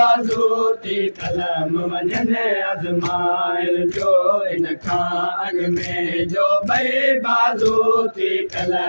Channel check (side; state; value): both; inverted; correlation -1.00